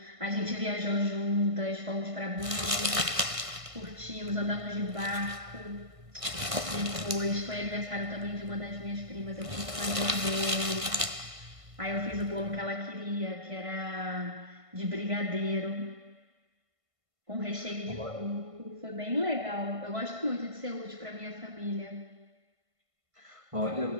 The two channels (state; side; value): late; left; 1.5 ms